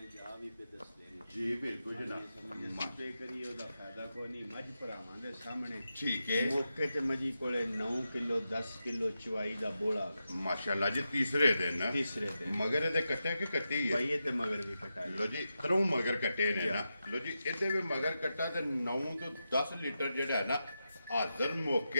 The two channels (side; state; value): both; inverted; correlation -0.89